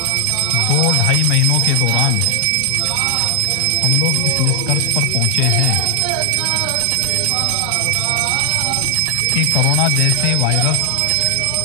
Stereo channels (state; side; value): different; both; correlation 0.00